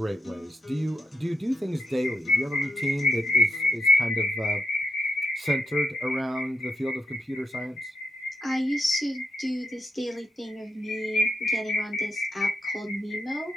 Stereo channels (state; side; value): normal; both; correlation 0.84